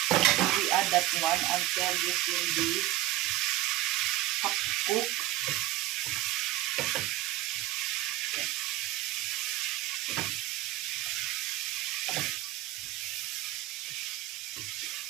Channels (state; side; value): quieter; left; 15.6 dB